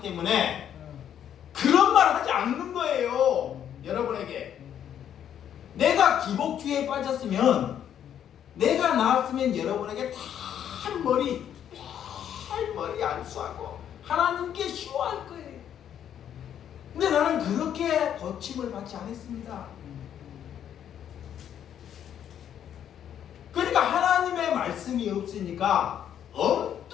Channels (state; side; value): quieter; right; 9.7 dB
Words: 때문에 그런 말 하지 않는 거예요. 여러분에게 내가 기복주의에 빠졌으면, 내가 나았으면 여러분에게 탈머리 안수하고 하나님께 쉬워할 거예요. 근데 나는 그렇게 고침을 받지 않았습니다. 그러니까 하나님의 말씀이 없으니까